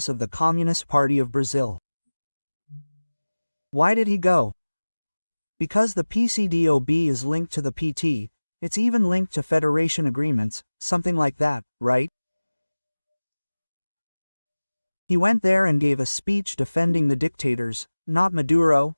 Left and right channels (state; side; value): inverted; both; correlation -1.00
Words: of the Communist Party of Brazil. Why did he go? Because the PCDOB is linked to the PT, it's even linked to federation agreements, something like that, right? He went there and gave a speech defending the dictators, not Maduro,